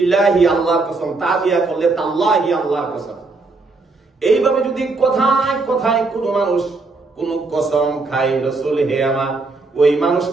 আল্লাহর কসম, তা দিয়া করলে তাল্লাহি আল্লাহর কসম। এইভাবে যদি কথায় কথায় কোন মানুষ কোন কসম খায়, রাসূল হে আমার, ওই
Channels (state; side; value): quieter; left; 3.7 dB